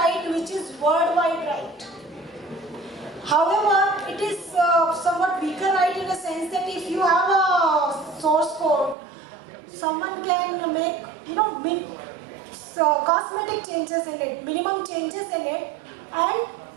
which is worldwide right. However, it is somewhat weaker right in a sense that if you have a source code, someone can make cosmetic changes in it, minimum changes in it, and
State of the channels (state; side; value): drops out; left; at 9.0 s